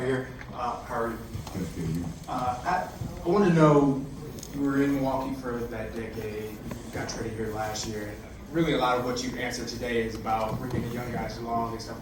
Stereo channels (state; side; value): identical; both; correlation 1.00